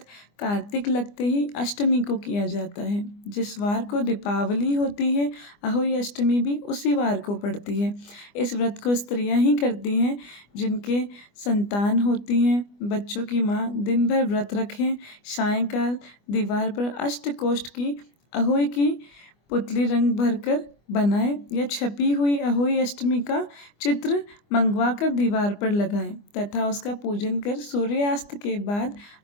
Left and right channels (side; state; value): right; late; 25 ms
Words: कार्तिक लगते ही अष्टमी को किया जाता है। जिस वार को दीपावली होती है, अहोई अष्टमी भी उसी वार को पड़ती है। इस व्रत को स्त्रियां ही करती हैं जिनके संतान होती हैं। बच्चों की माँ दिन भर व्रत रखें, सायंकाल दीवार पर अष्टकोष्ठ की अहोई की पुतली रंग भरकर बनाएं या छपी हुई अहोई अष्टमी का चित्र मंगवाकर दीवार पर लगाएं तथा उसका पूजन कर सूर्यास्त के बाद